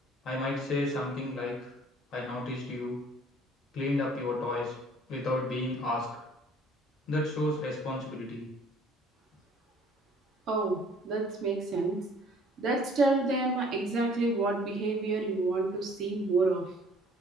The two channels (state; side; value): normal; both; correlation 0.56